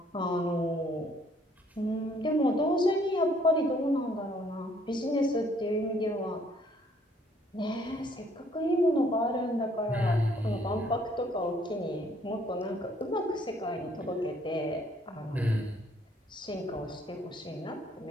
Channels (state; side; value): normal; both; correlation 0.63